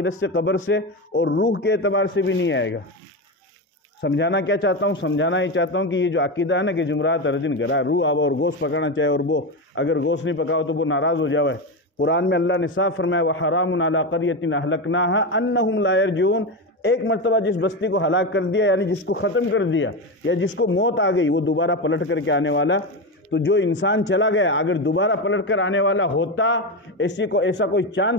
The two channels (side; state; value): both; normal; correlation 0.16